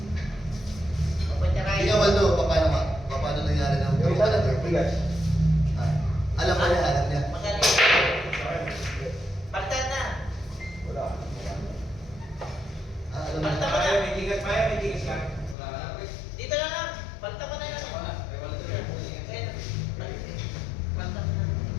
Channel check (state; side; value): drops out; right; at 15.6 s